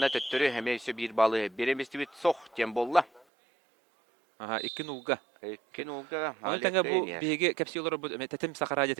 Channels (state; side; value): drops out; left; at 3.2 s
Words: төттірі әме өсі бір балы береместі бет соқ тем болла. Икен ұлға. Икен ұлға. Оны тәңі бұл бейге кәпсі олар бұл тәтім сақара